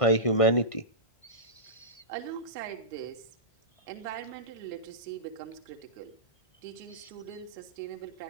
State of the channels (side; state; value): right; late; 1.5 ms